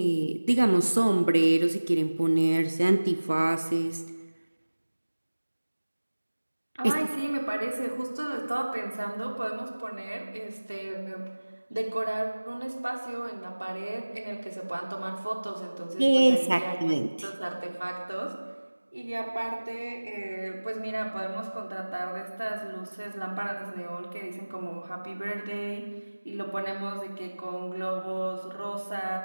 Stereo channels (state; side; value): inverted; both; correlation -1.00